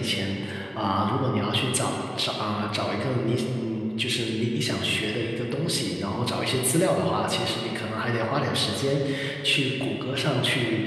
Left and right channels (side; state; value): both; identical; correlation 1.00